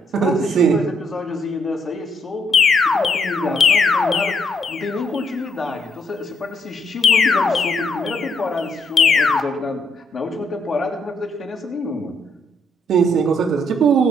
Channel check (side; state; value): both; normal; correlation 0.72